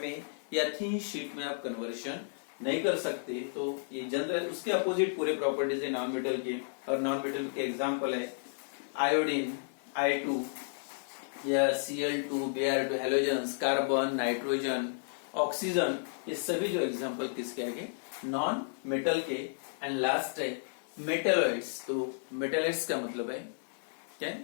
में या थिन शीट में आप कन्वर्शन नहीं कर सकते। तो ये जनरल उसके अपोजिट पूरे प्रॉपर्टीज है नॉन मेटल के, और नॉन मेटल के एग्जांपल है आयोडीन, I2 या Cl2, Br2, halogens, carbon, nitrogen, oxygen, ये सभी जो एग्जांपल किसके आएंगे? नॉन मेटल के। एंड लास्ट है मेटलॉइड्स। तो मेटलॉइड्स का मतलब है क्या?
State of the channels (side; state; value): right; silent; digital silence